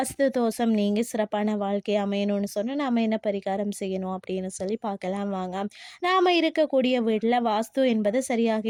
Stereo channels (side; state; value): both; identical; correlation 1.00